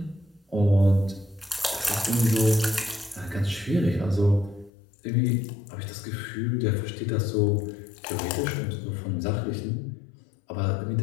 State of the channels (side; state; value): right; drops out; at 4.7 s